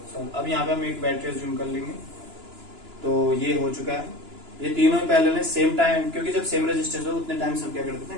सॉल्व। अब यहाँ पे हम एक बैटरी जूम कर लेंगे। तो ये हो चुका है, ये तीनों पहले ने सेम टाइम, क्योंकि जब सेम रेजिस्टेंस हो उतने टाइम से हम क्या कर देते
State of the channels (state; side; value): late; left; 2.9 ms